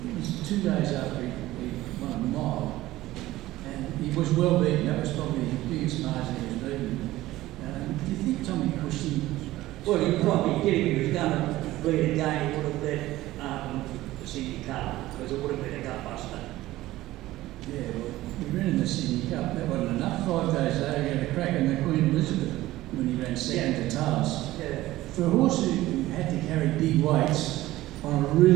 It was 2 days after he won a mile, and he was well beaten. That was probably the biggest margin he was beaten. Do you think Tommy pushed him? Well, he probably did. If he was going to bleed again, he would have let Sydney Cup, because it would have been a gutbuster. Yeah, well, he ran in the Sydney Cup. That wasn't enough. 5 days later, he had a crack in the Queen Elizabeth when he ran second to Tails. Yeah. For a horse who had to carry big weights on a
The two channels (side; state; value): left; quieter; 16.5 dB